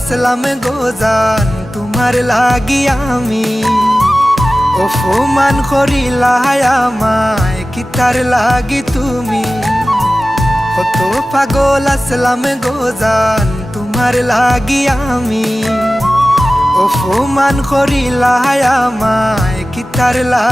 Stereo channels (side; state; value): both; normal; correlation 0.96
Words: গোজান তোমার লাগি আমি অপমান করিলা আমায় কিতার লাগি তুমি কত পাগল আসলাম গোজান তোমার লাগি আমি অপমান করিলা আমায় কিতার